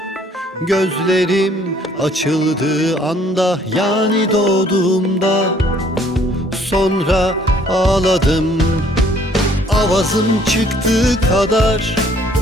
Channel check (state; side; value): normal; both; correlation 0.61